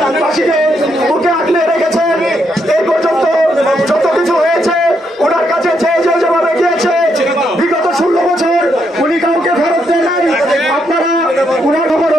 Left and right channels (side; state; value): both; normal; correlation 0.77